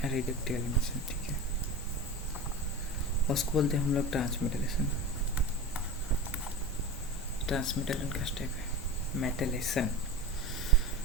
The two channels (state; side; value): normal; both; correlation 0.28